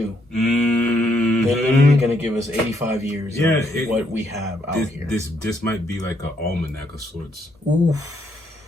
They're literally going to give us 85 years of what we have out here. This might be like an almanac of sorts. Oof.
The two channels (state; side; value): normal; both; correlation 0.74